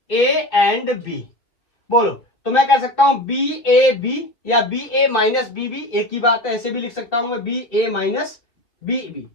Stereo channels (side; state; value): right; late; 2.9 ms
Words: A एंड B। बोलो तो मैं कह सकता हूं BAB या BA माइनस BB, एक ही बात है, ऐसे भी लिख सकता हूं मैं BA minus BB।